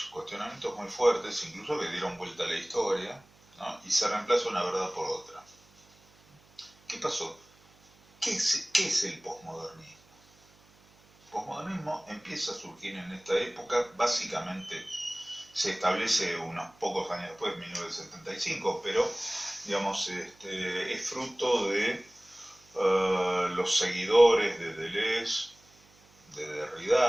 muy fuertes, incluso que dieron vuelta a la historia, ¿no? Y se reemplaza una verdad por otra. ¿Qué pasó? ¿Qué es el posmodernismo? El posmodernismo empieza a surgir en esta época, básicamente se establece unos pocos años después, 1975, pero digamos, es fruto de los seguidores de Deleuze, de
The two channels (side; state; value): right; noise; hum, 29 dB below the sound